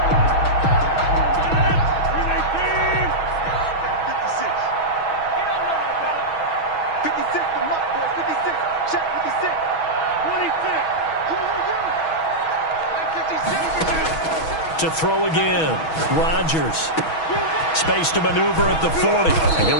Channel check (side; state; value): right; late; 6.2 ms